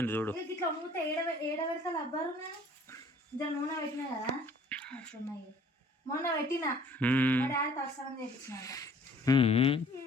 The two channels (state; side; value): normal; both; correlation 0.54